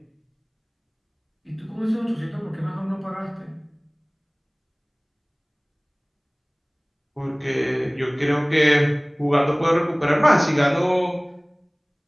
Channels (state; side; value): identical; both; correlation 1.00